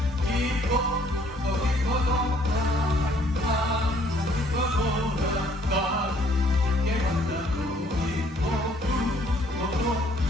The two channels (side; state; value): both; normal; correlation 0.62